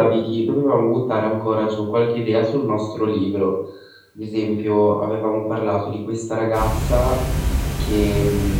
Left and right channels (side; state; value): both; identical; correlation 1.00